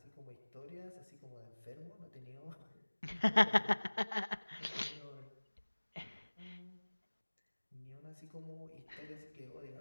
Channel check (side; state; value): both; inverted; correlation -1.00